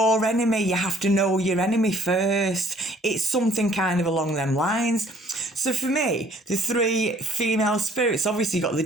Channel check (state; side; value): normal; both; correlation 0.58